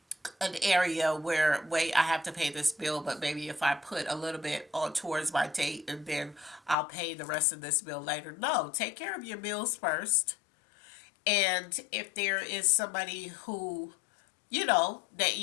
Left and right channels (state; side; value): drops out; right; at 6.8 s